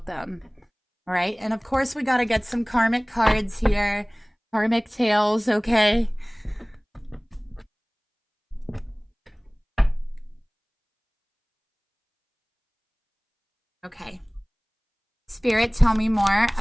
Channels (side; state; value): both; identical; correlation 1.00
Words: them. All right. And of course, we got to get some karmic cards here. Karmic tales, okay? Okay. Spirit, tell me more